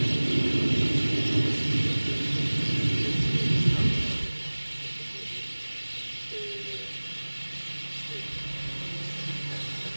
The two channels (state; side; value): inverted; both; correlation -1.00